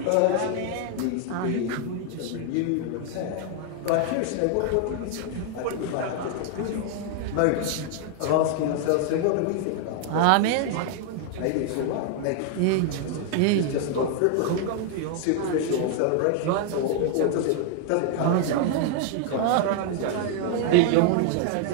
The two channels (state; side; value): different; both; correlation 0.00